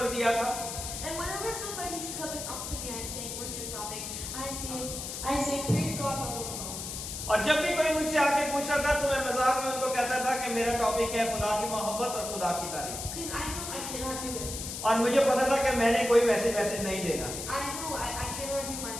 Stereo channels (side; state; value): left; noise; hiss, 6 dB below the sound